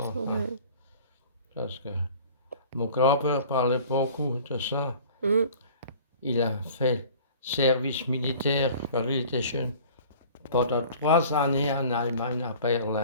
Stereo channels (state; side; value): inverted; both; correlation -0.46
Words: Hein. Mhm. Parce que mon grand-père parlait beaucoup de ça. Mhm. Il a fait service militaire quand il était jeune pendant 3 années en Allemagne, à